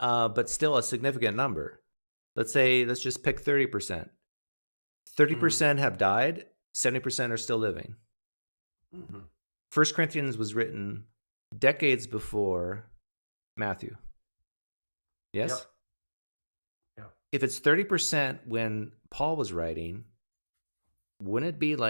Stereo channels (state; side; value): inverted; both; correlation -1.00